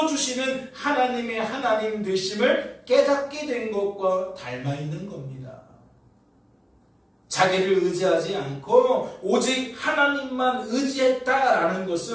하나님의 하나님 되심을 깨닫게 된 것과 닮아 있는 겁니다. 자기를 의지하지 않고 오직 하나님만 의지했다라는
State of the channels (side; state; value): both; identical; correlation 1.00